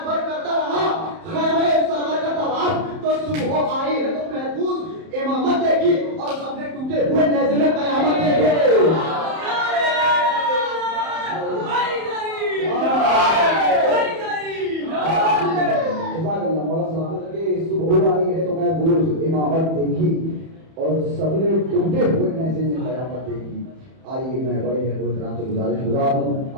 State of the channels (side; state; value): left; late; 31 ms